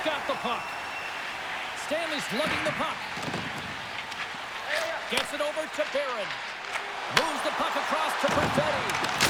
got the puck. Stanley's lugging the puck. Gets it over to Barron. Moves the puck across to Perfetti.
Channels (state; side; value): identical; both; correlation 1.00